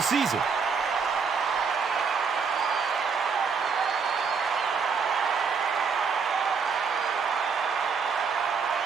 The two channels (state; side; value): quieter; left; 5.6 dB